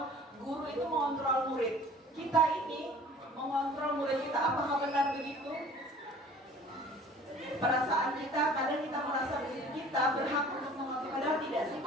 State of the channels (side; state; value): both; normal; correlation 0.48